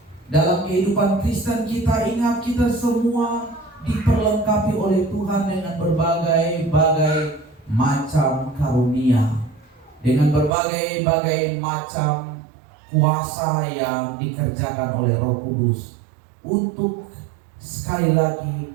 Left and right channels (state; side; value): drops out; left; at 10.5 s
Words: Dalam kehidupan Kristen kita, ingat kita semua diperlengkapi oleh Tuhan dengan berbagai-bagai macam karunia, dengan berbagai-bagai macam kuasa yang dikerjakan oleh Roh Kudus untuk sekali